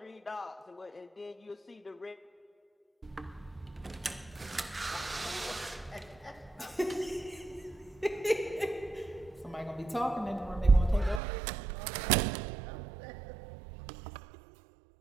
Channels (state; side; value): drops out; left; at 11.2 s